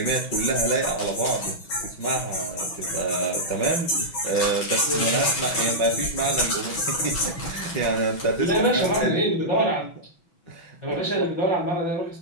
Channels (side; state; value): right; late; 6.0 ms